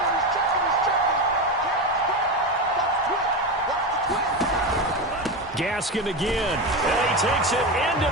Gaskin again, and he takes it into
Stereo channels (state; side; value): normal; both; correlation 0.18